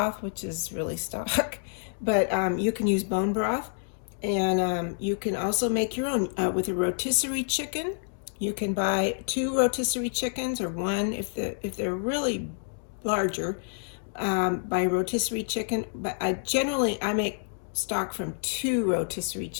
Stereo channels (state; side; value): silent; right; digital silence